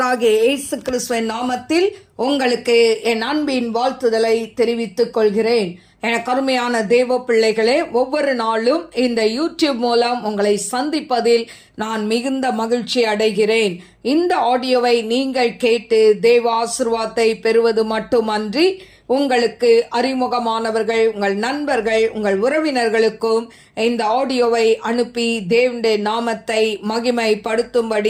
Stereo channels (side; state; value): both; identical; correlation 1.00